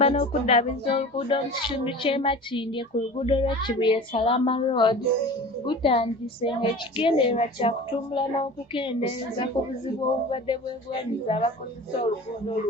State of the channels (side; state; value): both; normal; correlation 0.38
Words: n'okuddaabiriza oluguudo mu kitundu ky'e Makindye ku luguudo lw'e Kibuye-Salama Road gutandise ng'ekigendererwa kya kutumbula n'okukendeeza ku buzibu obubadde bwegwanyiza abakozesa oluguudo